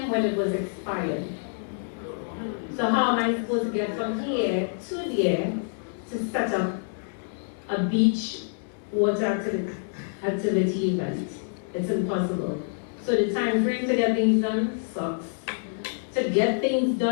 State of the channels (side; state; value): right; silent; digital silence